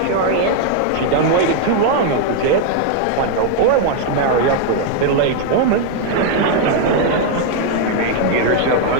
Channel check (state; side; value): different; both; correlation 0.00